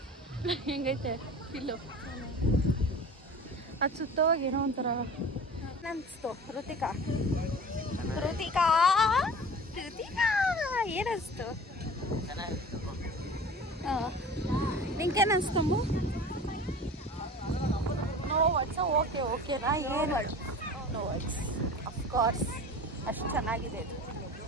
ಹೆಂಗೈತೆ ಫಿಲ್ಲು ಅದು ಸುತ್ತೋವಾಗ ಏನೋ ಒಂಥರ ಅನಿಸ್ತು Ruthika Ruthika Ruthika ಏನಿಸ್ತು ನಿಂಗೇನು ಅನಿಸ್ತಂಬು no words okay ಓಕೆನಾ ಏನು ನೋ ವರ್ಡ್ಸ್ ಅಫ್ಕೋರ್ಸ್ ಅಷ್ಟು ಚೆನ್ನಾಗಿದೆ ಇದು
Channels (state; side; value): normal; both; correlation 0.39